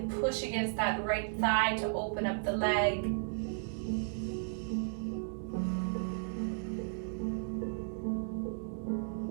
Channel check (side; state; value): left; silent; digital silence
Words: push against that right thigh to open up the leg.